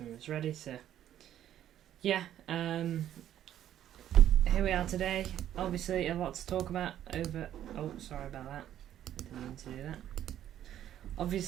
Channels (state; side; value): quieter; left; 11.3 dB